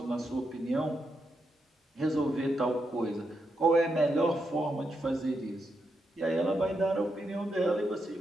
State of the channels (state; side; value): normal; both; correlation 0.83